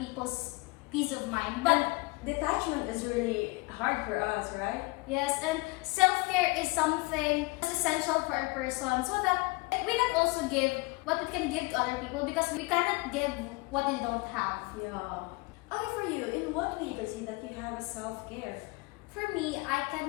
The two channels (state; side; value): quieter; right; 25.1 dB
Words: peace of mind. But Detachment is really hard for us, right? yes, and self-care is something that's essential for a person so that we can also give what we can give to other people, because we cannot give what they don't have. Yeah. Okay, for you, in what way you can say that you have a self-care? For me, I